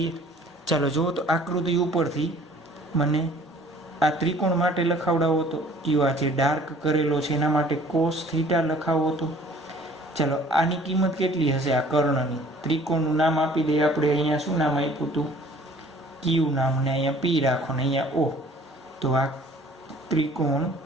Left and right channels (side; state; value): both; normal; correlation 0.52